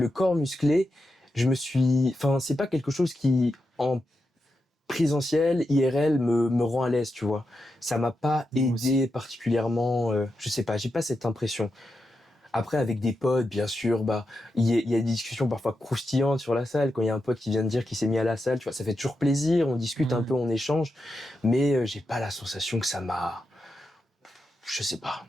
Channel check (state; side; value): normal; both; correlation 0.87